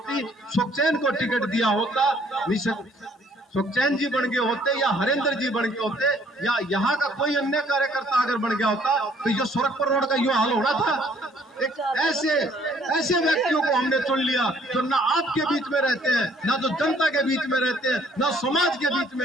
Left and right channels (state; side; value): normal; both; correlation 0.61